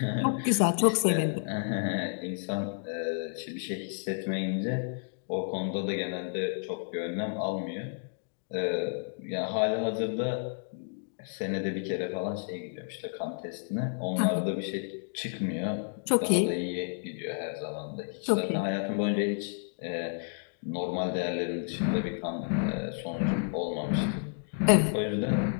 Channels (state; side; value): silent; right; digital silence